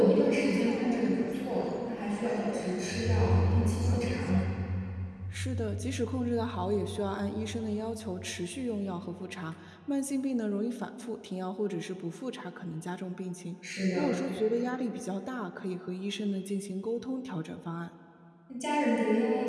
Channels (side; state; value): both; identical; correlation 1.00